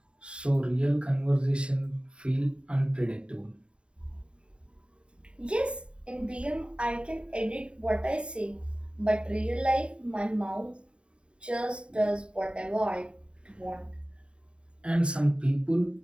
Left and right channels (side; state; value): left; late; 0.055 ms